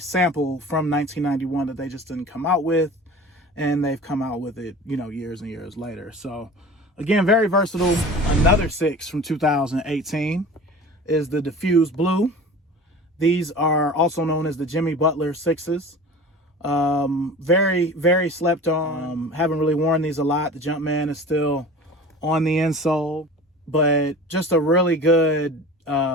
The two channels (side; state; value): both; normal; correlation 0.38